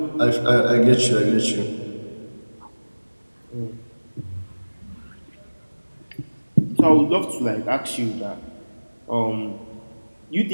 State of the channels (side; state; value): both; inverted; correlation -1.00